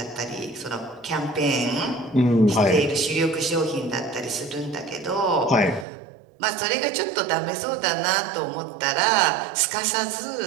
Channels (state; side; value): drops out; left; at 5.9 s